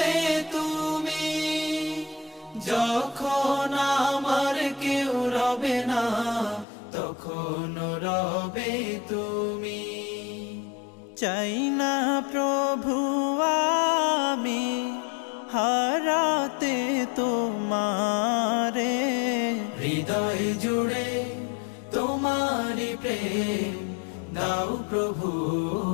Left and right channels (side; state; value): right; drops out; at 6.7 s